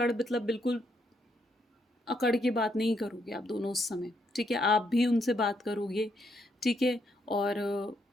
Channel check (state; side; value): normal; both; correlation 0.76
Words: मतलब बिल्कुल अकड़ के बात नहीं करोगे आप दोनों उस समय, ठीक है? आप भी उनसे बात करोगे, ठीक है? और